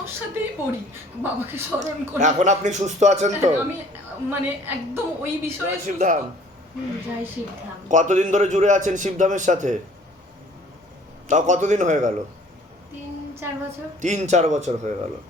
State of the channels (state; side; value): normal; both; correlation 0.54